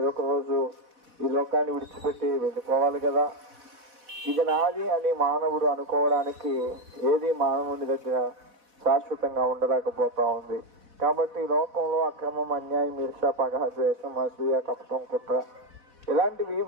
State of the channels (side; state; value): left; late; 4.1 ms